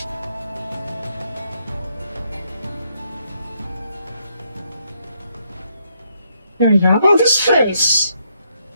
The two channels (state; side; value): inverted; both; correlation -0.75